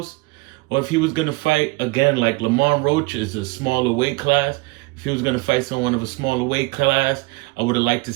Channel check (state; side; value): quieter; left; 23.8 dB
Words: Or if he was going to fight, again, like Lamont Roach is a smaller weight class. If he was going to fight someone of a smaller weight class, I would have liked to